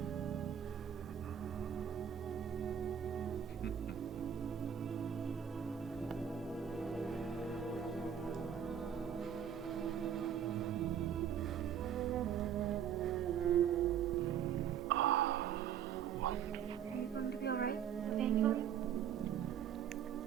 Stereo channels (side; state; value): left; quieter; 8.9 dB